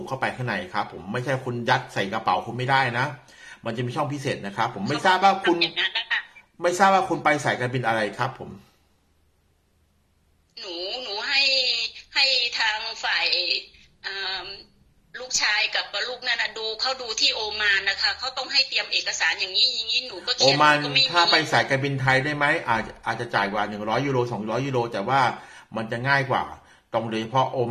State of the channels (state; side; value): identical; both; correlation 1.00